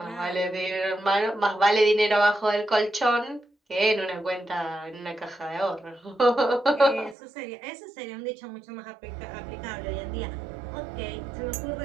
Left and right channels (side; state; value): left; drops out; at 7.2 s